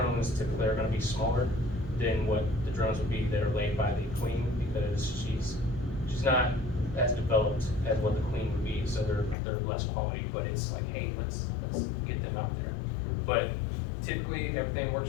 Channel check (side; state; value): right; drops out; at 9.3 s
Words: typically are going to be smaller than what the drones would be that are laid by the queen, because she's not as developed as what the queen would be, so they're less quality, but it's like, hey, let's get them out there. But typically, if everything